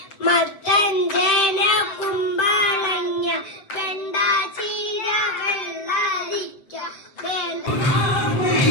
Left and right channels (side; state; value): right; late; 7.7 ms